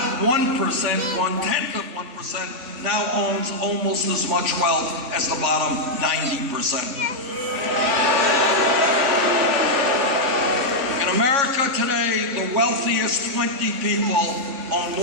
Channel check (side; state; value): left; late; 3.6 ms